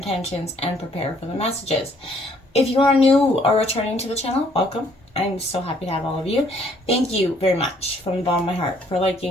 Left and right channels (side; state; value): both; normal; correlation 0.64